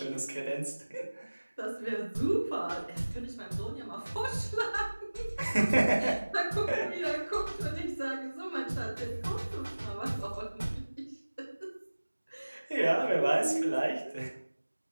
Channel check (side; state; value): both; inverted; correlation -1.00